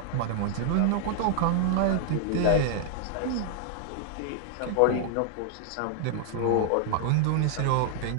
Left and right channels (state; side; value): different; both; correlation 0.00